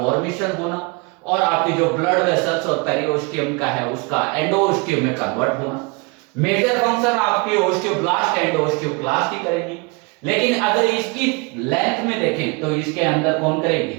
होना और आपकी जो ब्लड वेसल्स और पेरिओस्टियम का है उसका एंडोओस्टियम में कन्वर्ट होना। मेजर फंक्शन आपकी ओस्टियोब्लास्ट एंड ओस्टियोक्लास्ट ही करेंगी, लेकिन अगर इसकी लेंथ में देखें तो इसके अंदर कौन करेगी?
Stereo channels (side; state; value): left; quieter; 29.3 dB